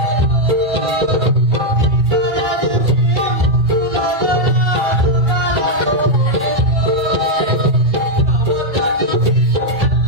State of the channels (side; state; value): left; late; 2.4 ms